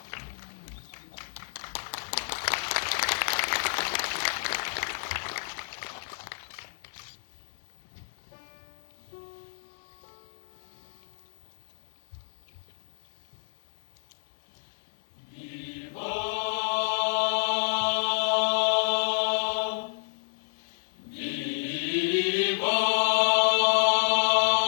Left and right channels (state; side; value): silent; right; 58 dB below the other